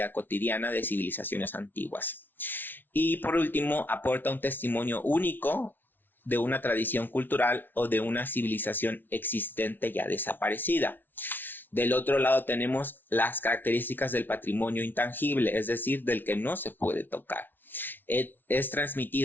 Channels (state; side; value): late; right; 0.093 ms